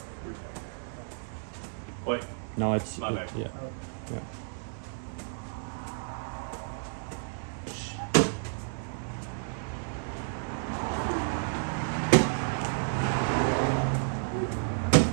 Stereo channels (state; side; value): silent; left; digital silence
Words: Wait, No, it's My bad. Yeah. Yeah.